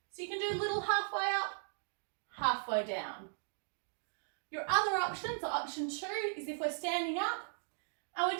So you can do a little halfway up, halfway down. Your other option, so option two, is if we're standing up and we're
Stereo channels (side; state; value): left; silent; digital silence